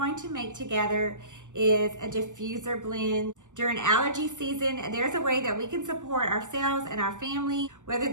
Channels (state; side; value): late; left; 0.86 ms